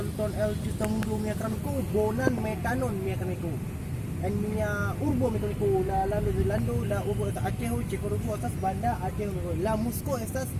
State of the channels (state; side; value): identical; both; correlation 1.00